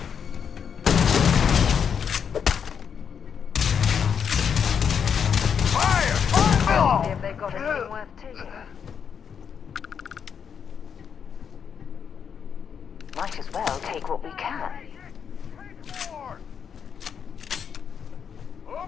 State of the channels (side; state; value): right; quieter; 7.3 dB